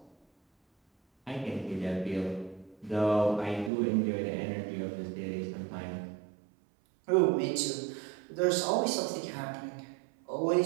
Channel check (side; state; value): left; drops out; at 3.7 s